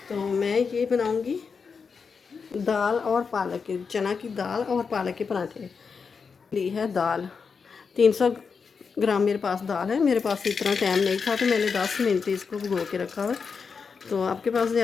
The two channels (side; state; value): right; quieter; 5.5 dB